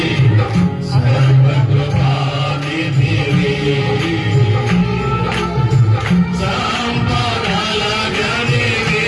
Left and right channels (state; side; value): identical; both; correlation 1.00